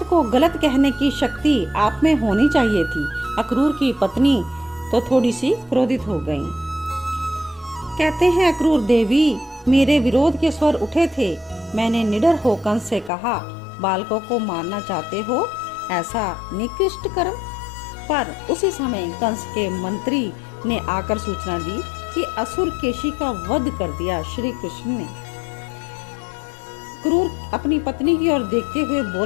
को गलत कहने की शक्ति आप में होनी चाहिए थी। अक्रूर की पत्नी तो थोड़ी सी क्रोधित हो गईं। कहते हैं अक्रूर, देवी मेरे विरोध के स्वर उठे थे। मैंने निडर हो कंस से कहा, बालकों को मारना चाहते हो, ऐसा निकृष्ट कर्म। पर उसी समय कंस के मंत्री ने आकर सूचना दी कि असुर केशी का वध कर दिया श्री कृष्ण ने। क्रूर अपनी पत्नी की ओर देखते हुए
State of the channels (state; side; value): drops out; right; at 13.1 s